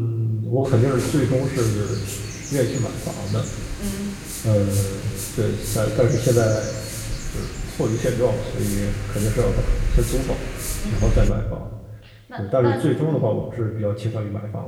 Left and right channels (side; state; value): both; identical; correlation 1.00